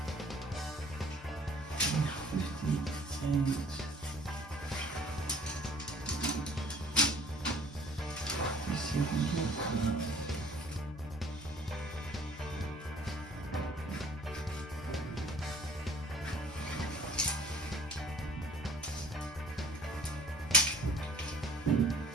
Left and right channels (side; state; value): both; normal; correlation 0.54